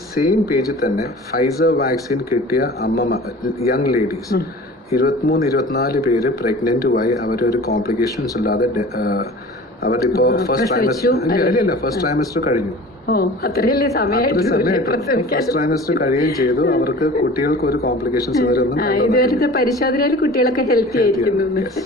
സെയിം പേജിൽ തന്നെ ഫൈസർ വാക്സിൻ കിട്ടിയ യങ് ലേഡീസ് 23-24 പേര് പ്രഗ്നന്റുമായി അവരൊരു കോംപ്ലിക്കേഷൻസ് ഇല്ലാതെ അവരിപ്പോ ഫസ്റ്റ് ട്രൈമസ്റ്റർ കഴിഞ്ഞു. ഫസ്റ്റ് ട്രൈമസ്റ്റർ കഴിയുകയും ചെയ്തു. അവർക്ക് കുട്ടികൾക്ക് ഒരു കോംപ്ലിക്കേഷൻസ് ഇതുവരെ പരിശോധനയിൽ കുട്ടികളൊക്കെ ഹെൽത്തി ആയിരിക്കുന്നു.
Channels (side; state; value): both; normal; correlation 0.41